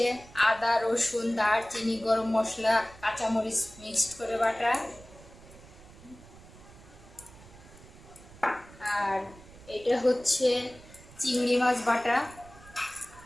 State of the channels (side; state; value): right; noise; rumble, 21 dB below the sound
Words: আদা রসুন দারচিনি গরম মশলা কাঁচামরিচ মিক্সড করে বাটা, আর এটা হচ্ছে চিংড়ি মাছ বাটা।